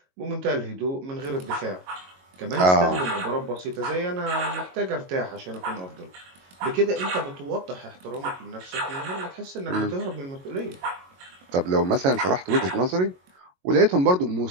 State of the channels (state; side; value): late; left; 22 ms